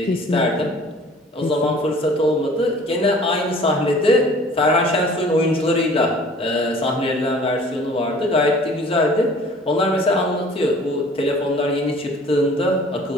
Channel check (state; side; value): normal; both; correlation 0.49